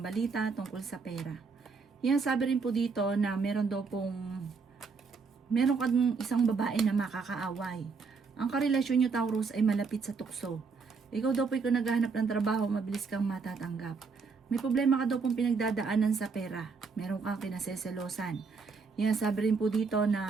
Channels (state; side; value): quieter; left; 4.9 dB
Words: balita tungkol sa pera. Sabi rin po dito na meron kang isang babae na makakaaway. Ang karelasyon nyo Taurus ay malapit sa tukso. Ikaw daw po kung naghahanap ng trabaho, mabilis kang matatanggap. May problema ka daw pong pinagdadaanan sa pera. Meron kang kinaseselosan. Sabi rin po dito